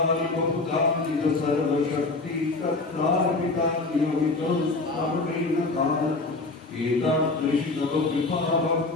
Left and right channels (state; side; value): quieter; right; 3.4 dB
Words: बहुधान्वित सर्वशक्ति तत्रार्पिता नियमितं स्मरणेन काल एतादृशी तव